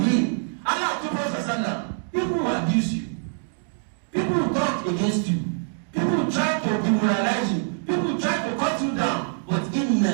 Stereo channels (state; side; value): silent; left; digital silence